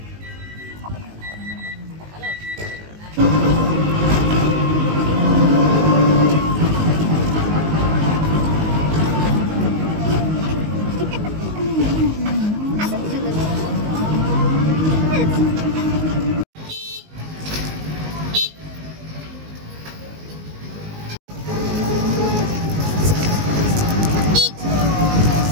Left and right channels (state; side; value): late; left; 19 ms